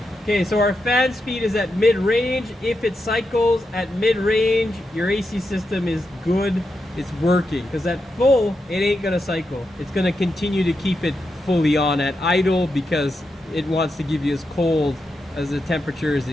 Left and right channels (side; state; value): both; normal; correlation 0.86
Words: Okay, so our fan speed is at mid-range. If it cycles at mid-range, your AC system is good. It's working. Because at full, it ain't gonna cycle. It's gonna continue to keep it fully on at idle because it wants to give you as cold as the temperature as